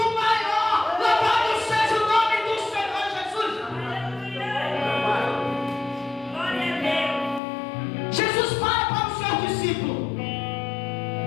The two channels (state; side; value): drops out; right; at 7.4 s